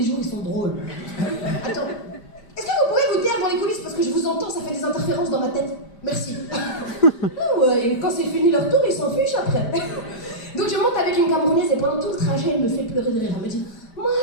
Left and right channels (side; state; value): right; late; 5.0 ms